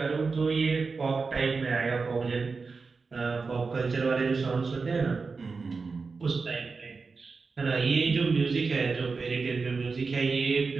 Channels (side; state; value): left; quieter; 4.5 dB